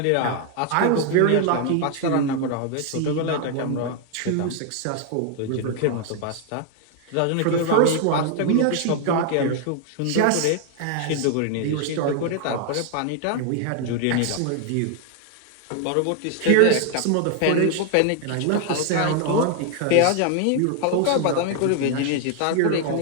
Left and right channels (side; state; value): both; different; correlation 0.00